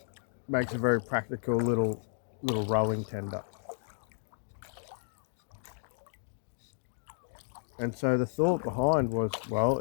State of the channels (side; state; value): right; silent; 56 dB below the other